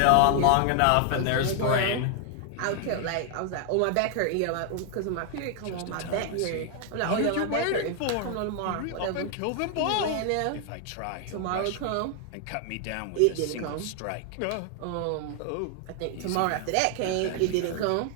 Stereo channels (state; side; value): different; both; correlation 0.00